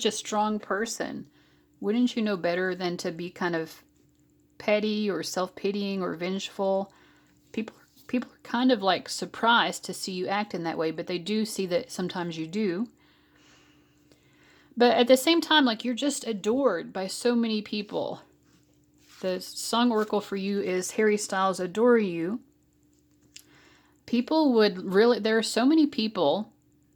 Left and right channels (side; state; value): both; identical; correlation 1.00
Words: a strong person. Wouldn't you know better than to be kind of petty or self-pitying or vengeful? People are kind of like surprised to see you act in that way, but they do see that sometimes you do. But at the same time, like, you're just adored by so many people. The song oracle for you is Harry Styles Adore You. People would really, there are so many people